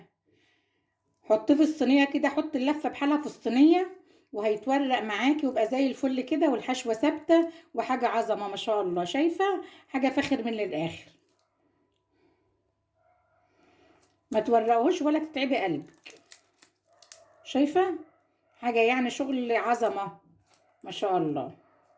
حطيه في الصينيه كده، حط اللفه بحالها في الصينيه وهيتورق معاكي ويبقى زي الفل كده، والحشوه ثابته وحاجه عظمه ما شاء الله. شايفه؟ حاجه فاخر من الاخر. ما تورقوش ولا تتعبي قلبك. شايفه؟ حاجه يعني شغل عظمه ما شاء الله.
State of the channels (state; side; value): identical; both; correlation 1.00